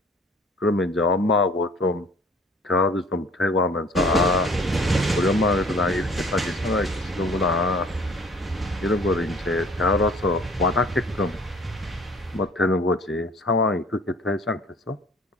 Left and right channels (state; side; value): normal; both; correlation 0.52